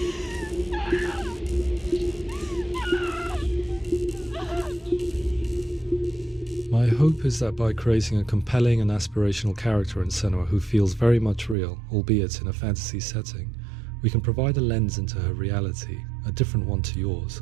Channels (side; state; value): left; drops out; at 11.6 s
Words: My hope is that by creating a compelling and aspirational character in Senua who feels very much real, albeit in a fantasy setting, we can provide a lens into her reality, a different one to yours,